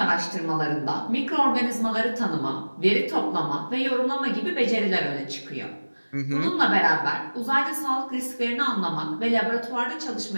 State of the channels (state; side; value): inverted; both; correlation -1.00